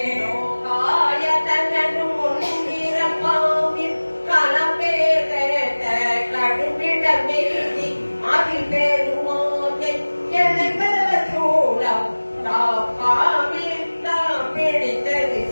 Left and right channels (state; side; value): inverted; both; correlation -1.00